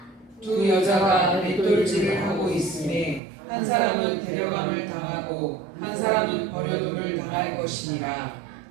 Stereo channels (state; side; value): drops out; left; at 3.2 s